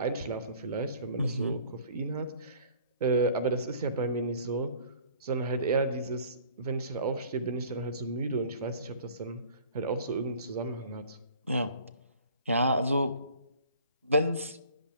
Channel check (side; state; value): both; inverted; correlation -0.51